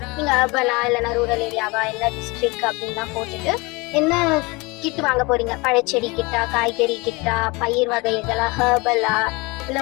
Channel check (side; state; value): right; quieter; 25.5 dB